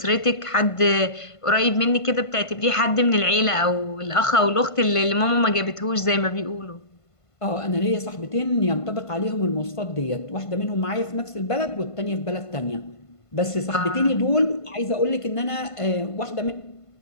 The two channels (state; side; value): late; right; 1.5 ms